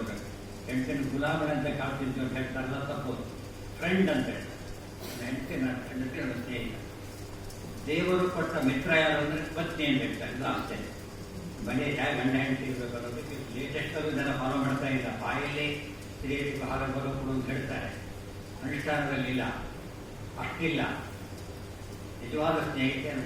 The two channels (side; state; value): both; identical; correlation 1.00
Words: ಹೆಂಡತಿನ ಗುಲಾಮನಂತೆ ಕಾಡ್ತಿದ್ವಿ ಅಂತ ಹೇಳ್ತಾರಲ್ಲ, ತಪ್ಪೋದು. ಫ್ರೆಂಡ್ ಅಂತ ಹೇಳ್ತಾರೆ. ಹೆಂಡತಿ ನನ್ನ ಸ್ನೇಹಿತ. ದೇವರು ಕೊಟ್ಟ ಮಿತ್ರ ಯಾರು ಅಂದರೆ ಪತ್ನಿ ಅಂತ ಹೇಳ್ತಾರೆ. ಇದು ಆಶ್ಚರ್ಯ. ಮನೆ ಹೇಗೆ ಗಂಡ ಹೆಂಡತಿ ಇರಬೇಕು ಅನ್ನೋದಕ್ಕೆ ಲೇಟೆಸ್ಟಲ್ಲೂ ಜನ ಫಾಲೋ ಮಾಡ್ತಾ ಇಲ್ಲ. ಬಾಯಲ್ಲಿ ಸ್ತ್ರೀಯರಿಗೆ ಆಹಾರ ಬರೋದು ಅಂತ ಹೇಳ್ತಾರೆ, ಅನುಷ್ಠಾನದಲ್ಲಿ ಇಲ್ಲ, ಅಷ್ಟಿಲ್ಲ. ನಿಜವಾದ ಸ್ನೇಹಿತೆ